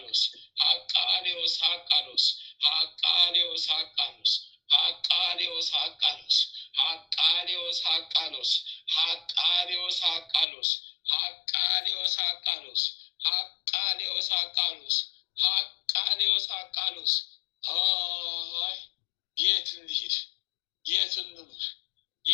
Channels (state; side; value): drops out; right; at 10.5 s